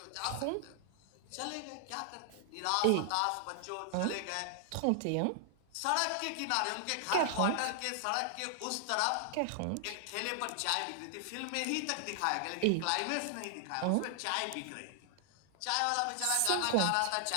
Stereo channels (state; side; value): different; both; correlation 0.00